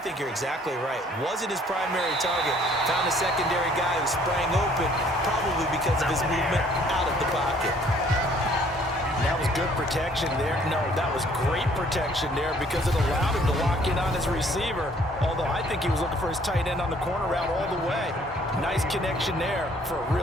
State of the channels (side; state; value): both; normal; correlation 0.60